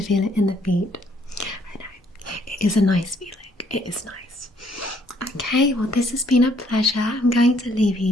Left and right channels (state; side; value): normal; both; correlation 0.66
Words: it in the feet. I know, it is a nice feeling, it is nice. Okay, well, this has been a pleasure. I'm going to leave